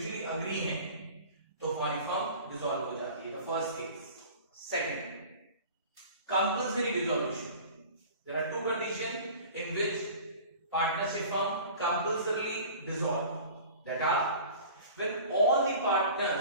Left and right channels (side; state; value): both; inverted; correlation -0.41